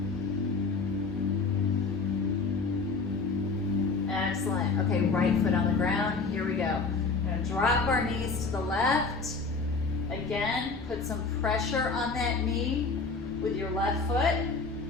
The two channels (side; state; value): right; quieter; 4.2 dB